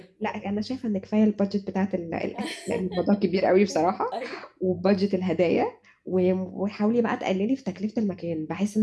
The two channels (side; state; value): both; identical; correlation 1.00